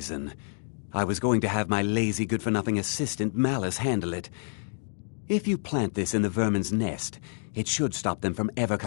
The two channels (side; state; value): right; silent; digital silence